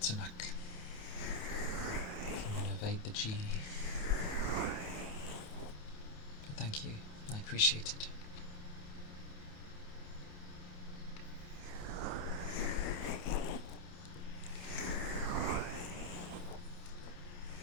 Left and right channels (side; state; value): right; late; 28 ms